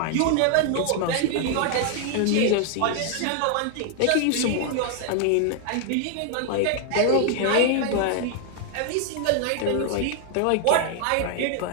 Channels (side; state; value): both; different; correlation 0.00